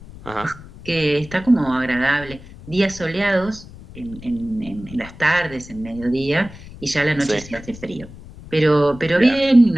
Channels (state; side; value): noise; left; rumble, 17 dB below the sound